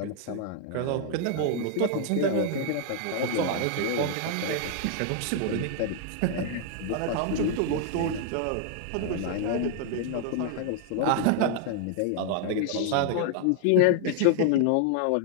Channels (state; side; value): different; both; correlation 0.00